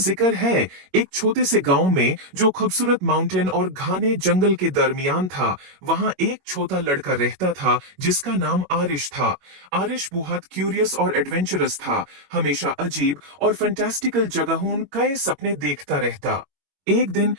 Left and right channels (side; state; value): left; late; 21 ms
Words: है, एक छोटे से गांव में जो खूबसूरत माउंटेन और घने जंगल के दरमियान था। वहां एक छोटा लड़का रहता था जिसका नाम आरिश था। आरिश बहुत क्यूरियस और एडवेंचरस था। हमेशा अजीब और फैंटास्टिकल जगहों कई सपने देखता रहता। एक दिन